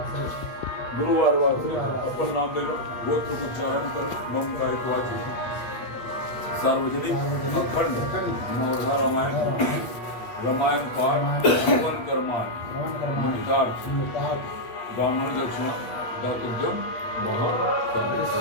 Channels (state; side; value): late; right; 8.5 ms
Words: गुरुवार वासरे अपन नाम ले लो गोत्र उच्चारण कर मम का एक वाची सार्वजनिक अखंड नवधा रामायण पाठ हवन कर्माण ब्राह्मण दक्षिणा दातव्यम